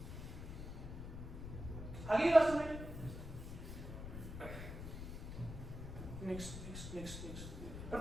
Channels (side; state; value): left; noise; rumble, 8 dB below the sound